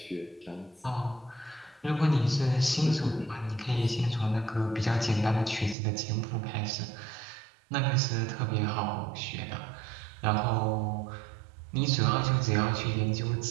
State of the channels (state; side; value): drops out; left; at 5.8 s